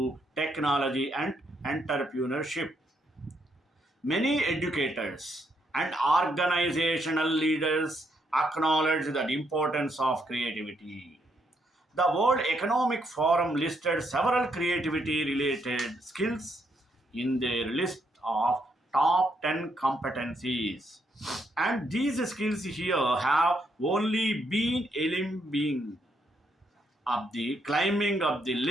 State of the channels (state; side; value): normal; both; correlation 0.75